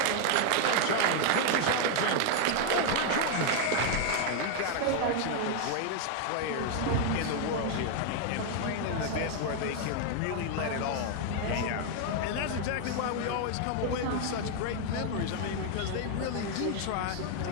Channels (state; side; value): different; both; correlation 0.00